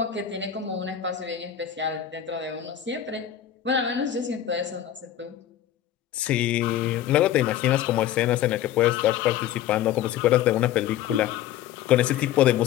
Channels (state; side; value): quieter; right; 11.2 dB